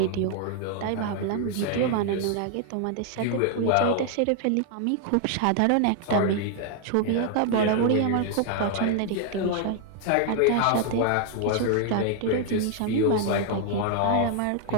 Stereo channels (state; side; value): different; both; correlation 0.00